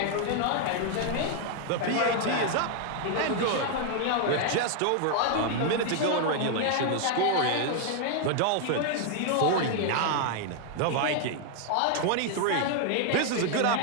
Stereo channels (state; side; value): different; both; correlation 0.00